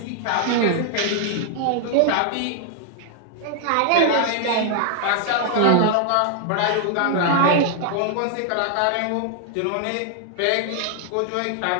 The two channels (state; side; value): different; both; correlation 0.00